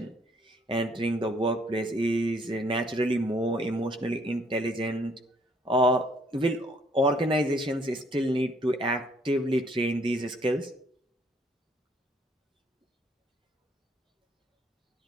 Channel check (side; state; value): both; normal; correlation 0.64